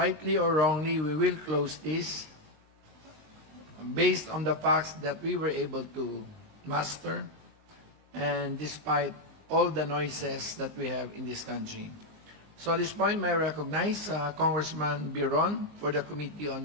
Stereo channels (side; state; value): left; late; 19 ms